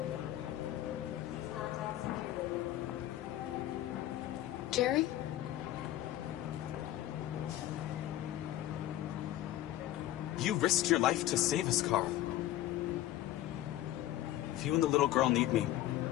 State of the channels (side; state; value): right; quieter; 14.0 dB